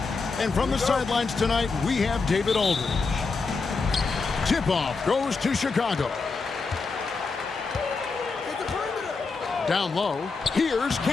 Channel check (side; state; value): right; quieter; 4.4 dB